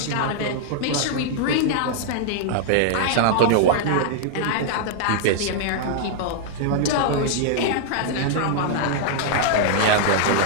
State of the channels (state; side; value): different; both; correlation -0.01